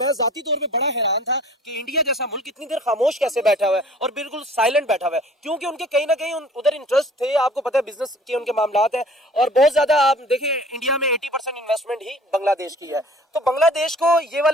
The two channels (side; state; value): both; normal; correlation 0.49